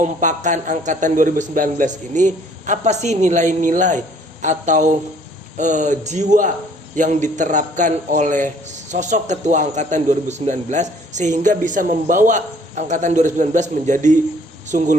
angkatan 2019 ini, apa sih nilai-nilai atau jiwa yang diterapkan oleh sosok ketua angkatan 2019 sehingga bisa membawa angkatan 2019 menjadi sungguh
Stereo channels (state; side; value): normal; both; correlation 0.59